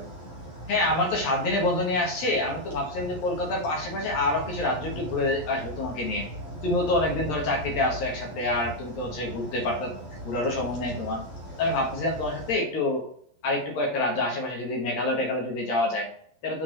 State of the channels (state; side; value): late; right; 11 ms